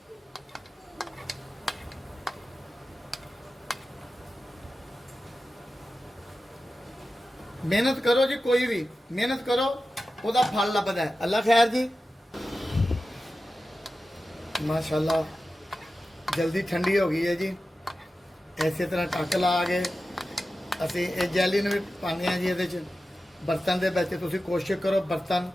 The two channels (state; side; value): normal; both; correlation 0.93